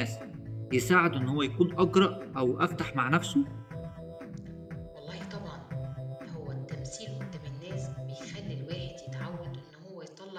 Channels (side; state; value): both; identical; correlation 1.00